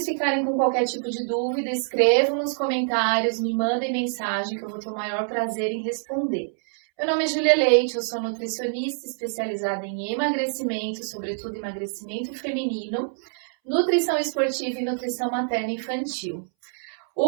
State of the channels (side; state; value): left; silent; 61 dB below the other